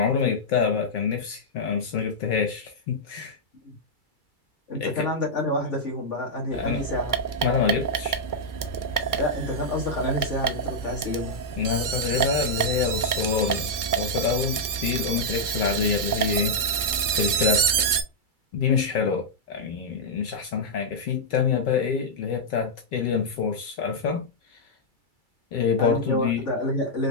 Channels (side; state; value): right; late; 2.3 ms